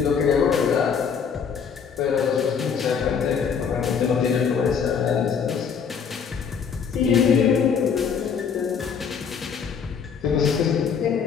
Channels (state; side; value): quieter; right; 6.7 dB